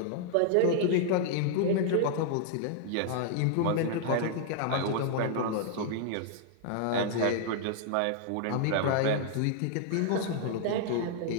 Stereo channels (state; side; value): different; both; correlation 0.00